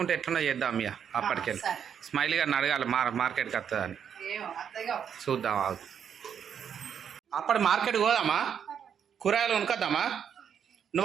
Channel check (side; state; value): left; quieter; 8.1 dB